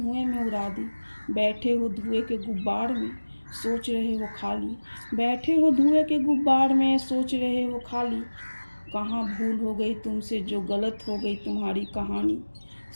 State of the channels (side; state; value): both; inverted; correlation -1.00